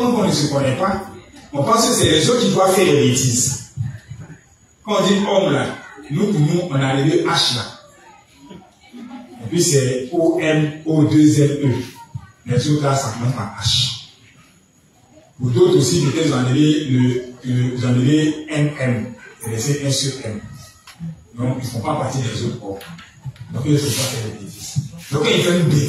qu'on ne se connaît pas, on pense que c'est les autres qui doivent faire des bêtises. Quand on dit homme là, nous pour nous, on a les deux H là. Et puis c'est O-M-O-2-L-E. Les autres là, ça commence par H. Pour d'autres aussi, peut-être vous enlevez M-M. C'est un sur M. Donc, ils ne font pas partie des autres corps. Donc, ils ne faut pas faire des bêtises. Donc, quand il fait une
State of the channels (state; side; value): identical; both; correlation 1.00